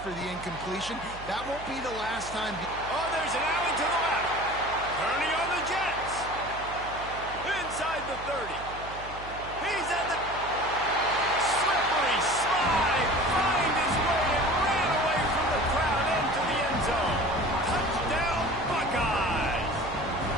for the incompletion. That won't be the last time. Oh, there's an alley to the left. Turning on the Jets. Inside the 30. He's at the slippery slide. Find his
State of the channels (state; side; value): noise; right; hum, 14 dB below the sound